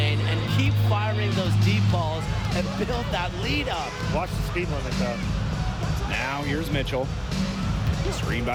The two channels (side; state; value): both; identical; correlation 1.00